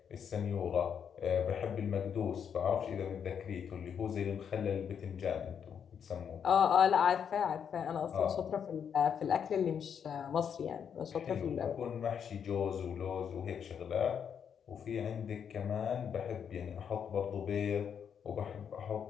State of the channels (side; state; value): right; quieter; 7.7 dB